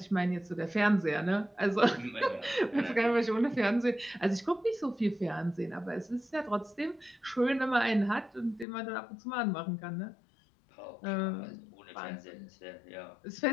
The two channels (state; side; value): drops out; right; at 8.7 s